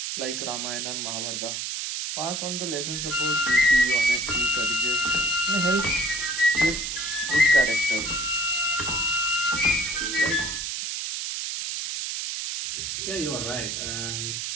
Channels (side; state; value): right; noise; hiss, 3 dB below the sound